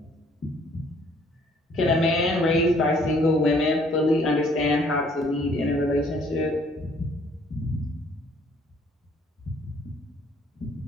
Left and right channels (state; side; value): normal; both; correlation 0.61